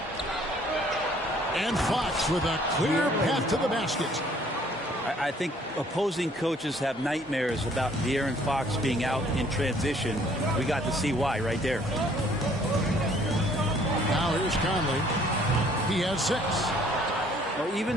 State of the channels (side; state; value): both; normal; correlation 0.60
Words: And Fox with a clear path to the basket. I think opposing coaches have nightmares about De'Aaron Fox being out in transition. We got to see why right there. Now here's Conley. He has 6. Well,